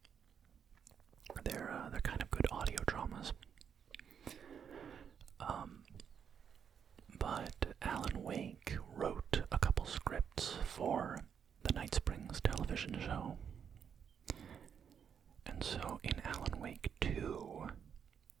they're kind of good audio dramas. But Alan Wake wrote a couple scripts for the Night Springs television show. And so in Alan Wake 2,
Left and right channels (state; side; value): quieter; left; 7.6 dB